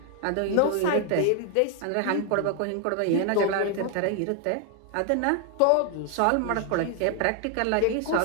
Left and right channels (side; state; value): both; different; correlation 0.00